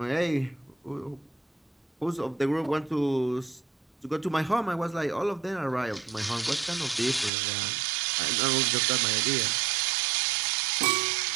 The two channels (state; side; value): drops out; left; at 7.3 s